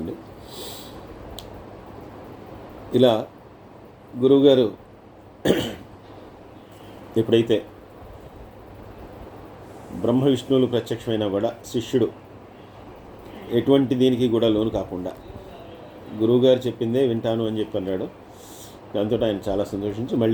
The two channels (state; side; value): identical; both; correlation 1.00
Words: ఇలా గురువుగారు ఎప్పుడైతే బ్రహ్మ విష్ణువులు ప్రత్యక్షమైనా కూడా శిష్యుడు ఎటువంటి దీనికి కూడా లోను కాకుండా గురువుగారు చెప్పిందే వింటాను అని చెప్పి అన్నాడు. దాంతో ఆయన చాలా సంతోషించి